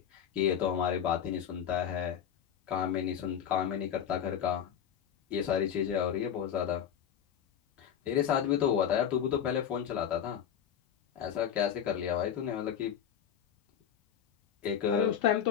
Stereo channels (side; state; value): right; quieter; 8.9 dB